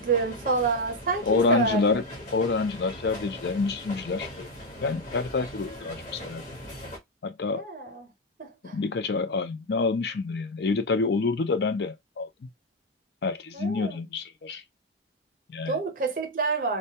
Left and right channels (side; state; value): both; normal; correlation 0.06